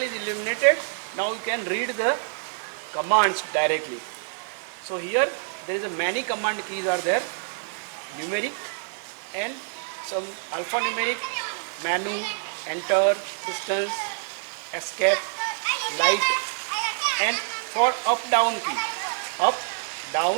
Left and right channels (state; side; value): silent; left; digital silence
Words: illuminated. Now you can read the commands directly. So here there is a many command keys are there, numeric and some alphanumeric, menu, enter, distance, escape, light, and for up down key, up,